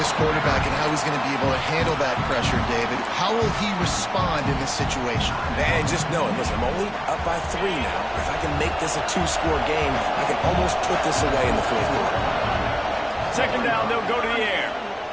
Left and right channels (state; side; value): identical; both; correlation 1.00